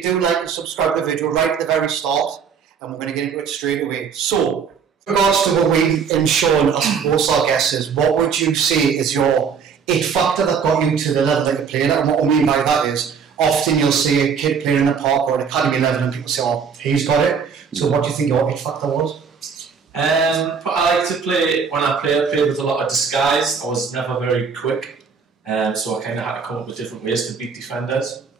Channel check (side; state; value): left; quieter; 6.3 dB